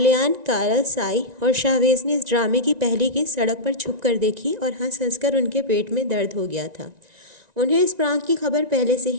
کارل، سائی اور شاویز نے اس ڈرامے کی پہلی قسط سڑک پر چھپ کر دیکھی اور ہنس ہنس کر ان کے پیٹ میں درد ہو گیا تھا۔ انہیں اس پرانک کی خبر پہلے سے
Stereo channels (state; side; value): late; left; 1.9 ms